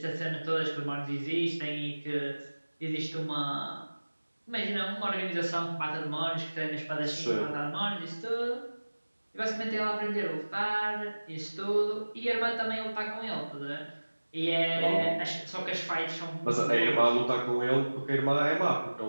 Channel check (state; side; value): inverted; both; correlation -1.00